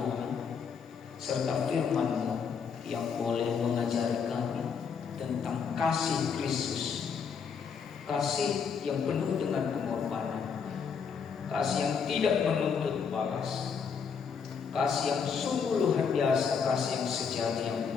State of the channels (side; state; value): right; quieter; 6.3 dB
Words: serta firman-Mu yang boleh mengajari kami tentang kasih Kristus, kasih yang penuh dengan pengorbanan, kasih yang tidak menuntut balas, kasih yang sungguh luar biasa, kasih yang sejati, yang